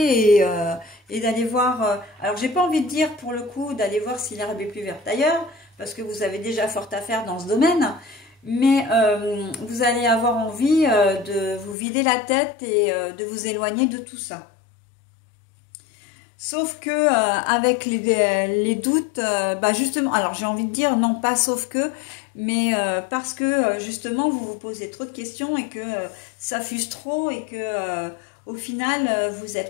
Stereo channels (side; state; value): right; drops out; at 11.8 s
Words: et d'aller voir... alors, j'ai pas envie de dire, pour le coup, d'aller voir si l'herbe est plus verte ailleurs, parce que vous avez déjà fort à faire dans ce domaine, mais vous allez avoir envie de vous vider la tête et de vous éloigner de tout ça. Sauf que avec les doutes, bah justement, alors j'ai envie de dire non pas sauf que, mais parce que justement vous vous posez trop de questions et que ça fuse trop et que au final vous